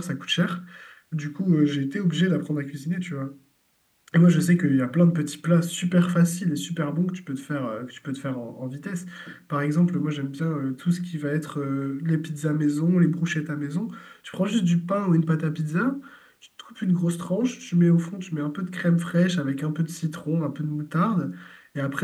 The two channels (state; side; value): identical; both; correlation 1.00